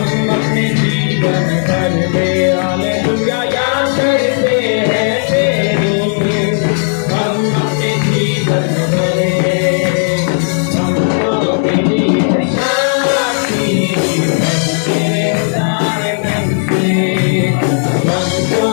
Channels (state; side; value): silent; right; digital silence